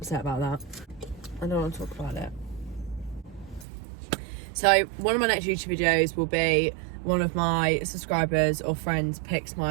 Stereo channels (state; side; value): drops out; left; at 3.7 s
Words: about that. I don't want to talk about it. So one of my next YouTube videos will be one of my subscribers or friends picks